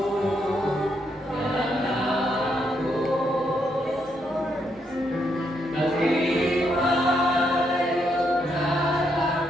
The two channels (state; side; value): normal; both; correlation 0.77